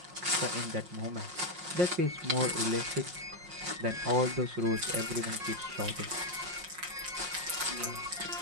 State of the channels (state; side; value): late; left; 5.6 ms